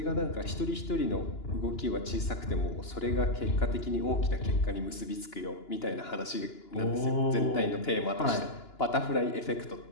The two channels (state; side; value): late; right; 2.9 ms